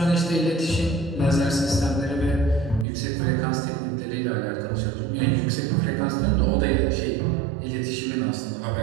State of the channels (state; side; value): drops out; left; at 2.9 s